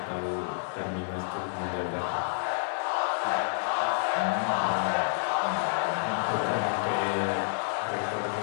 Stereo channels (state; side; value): silent; right; digital silence